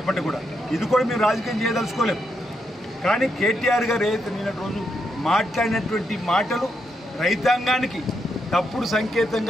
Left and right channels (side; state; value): both; normal; correlation 0.81